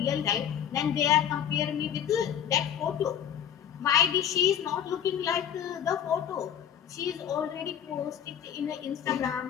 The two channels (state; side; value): quieter; right; 9.2 dB